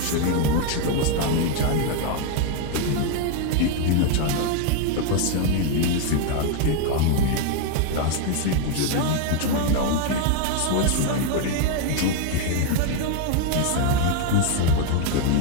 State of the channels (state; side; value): different; both; correlation 0.00